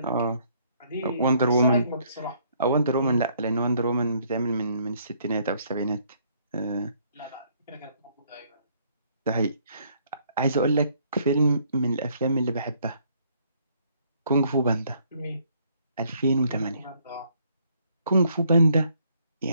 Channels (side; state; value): both; inverted; correlation -0.67